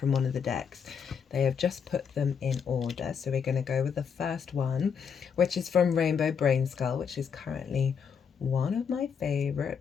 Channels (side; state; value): right; quieter; 6.8 dB